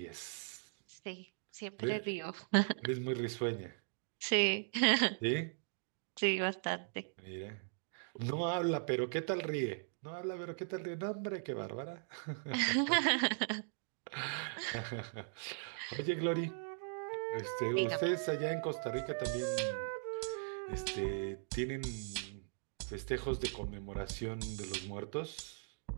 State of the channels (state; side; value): silent; left; digital silence